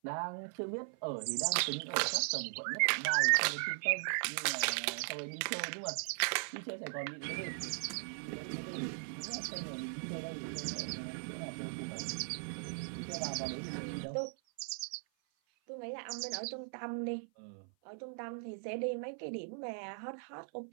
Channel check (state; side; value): silent; left; 52 dB below the other